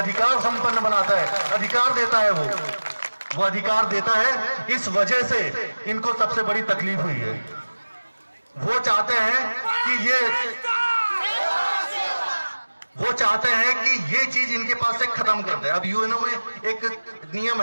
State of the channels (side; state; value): both; inverted; correlation -1.00